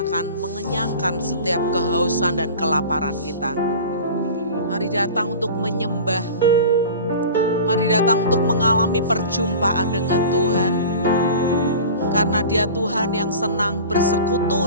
akan mengenyangkan setiap kehausan dan kelaparan kita. Mari datang untuk menyembah. Mari datang untuk mengalami perjumpaan dengan Tuhan. Karena Dia Tuhan yang senang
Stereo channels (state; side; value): inverted; both; correlation -0.37